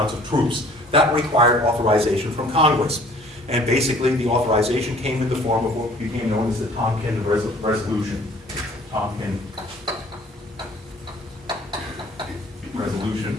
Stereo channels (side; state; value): both; normal; correlation 0.53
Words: of troops. That required authorization from Congress. And basically, the authorization came in the form of what became known as the Tonkin Resolution. Tonkin